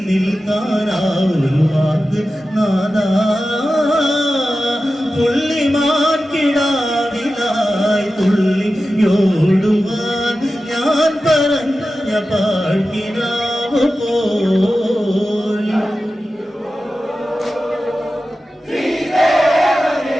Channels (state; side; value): normal; both; correlation 0.93